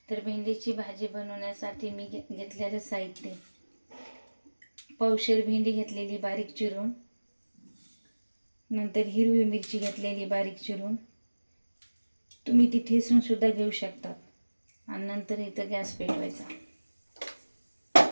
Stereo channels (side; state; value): both; inverted; correlation -1.00